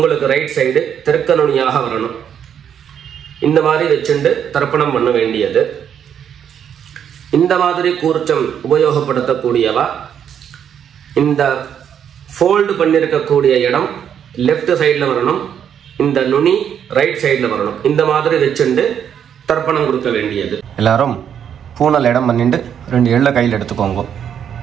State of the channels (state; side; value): quieter; left; 8.7 dB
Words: ரைட் சைடு தெற்கு நுனியாக வரணும். இந்த மாதிரி வச்சுண்டு தர்ப்பணம் பண்ண வேண்டியது. இந்த மாதிரி கூர்ச்சம் உபயோகப்படுத்தக்கூடியவா இந்த ஃபோல்டு பண்ணியிருக்கக்கூடிய இடம் லெஃப்ட் சைடில் வரணும், இந்த நுனி ரைட் சைடில் வரணும். இந்த மாதிரி வச்சுண்டு தர்ப்பணம் கொடுக்க வேண்டியது. எல்லாரும் பூனல் இடம் பண்ணிட்டு 2 எள்ள கையில் எடுத்துக்கோங்க.